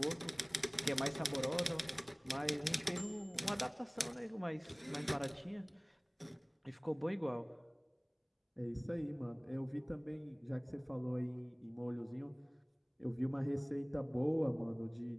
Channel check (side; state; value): both; identical; correlation 1.00